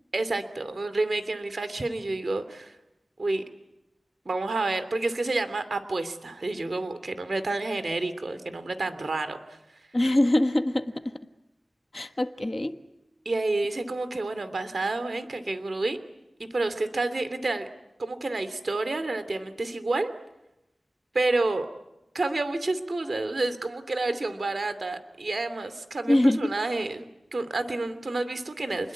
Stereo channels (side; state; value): both; normal; correlation 0.96